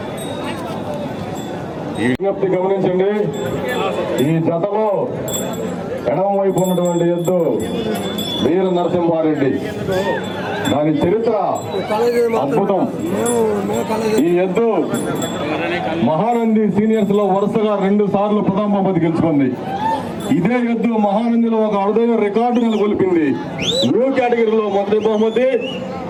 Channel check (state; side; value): identical; both; correlation 1.00